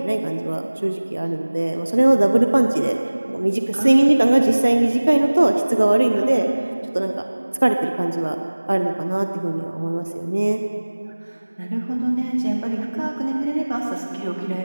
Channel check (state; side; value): inverted; both; correlation -1.00